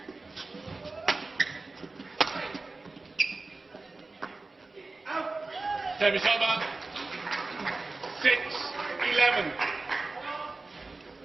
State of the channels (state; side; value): quieter; left; 3.5 dB